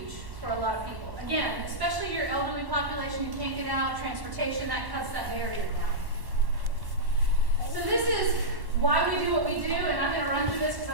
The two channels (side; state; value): left; late; 1.1 ms